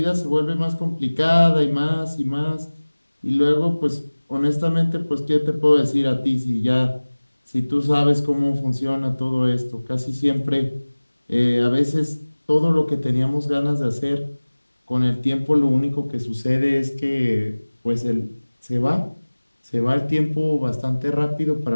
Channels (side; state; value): both; inverted; correlation -1.00